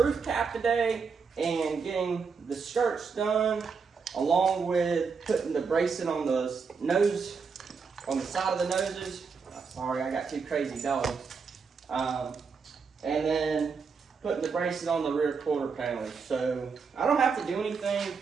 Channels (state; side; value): quieter; left; 5.4 dB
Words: cap today and getting the skirts done, along with putting the bracing on the nose, on the side of the noses. Sorry, I got two crazy dogs. And then putting the bracing on the rear quarter panels. So I don't have to do anything